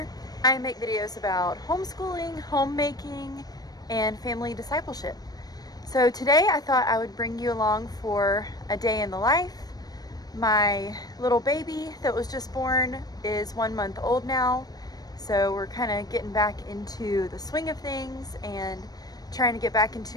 I make videos about homeschooling, homemaking, and family discipleship. So today I thought I would bring you along for a day in the life. My little baby that was just born is 1 month old now. So we're kind of getting back into the swing of things and trying to get back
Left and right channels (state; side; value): late; right; 0.19 ms